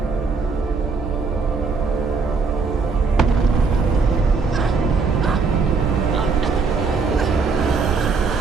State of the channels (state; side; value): quieter; left; 4.7 dB